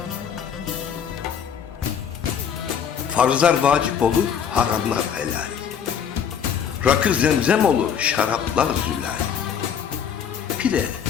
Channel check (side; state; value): right; quieter; 7.9 dB